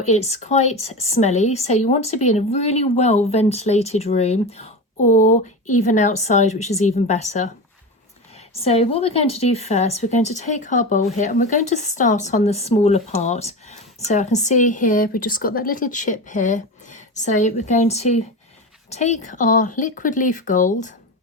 it's quite smelly, so you want to be in a really well ventilated room or even outside, which is even better. So what we're going to do first, we're going to take our bowl here and we're going to start on the smaller part. So I can see here, we've just got that little chip here. So we're going to take our liquid leaf gold.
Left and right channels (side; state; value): both; normal; correlation 0.24